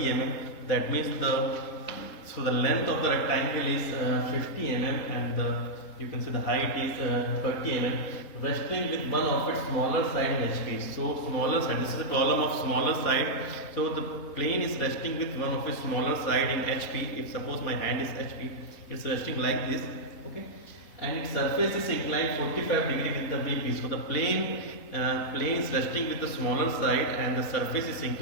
that means the length of the rectangle is 50 mm, and you can say the height is 30 mm, resting with one of its smaller side in HP. So smaller side, this is the problem of smaller side. So the plane is resting with one of its smaller side in HP. If suppose my hand is HP, it's resting like this, okay, and its surface is inclined 45 degree with the VP. So the plane is resting with the smaller side and the surface is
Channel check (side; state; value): right; late; 4.3 ms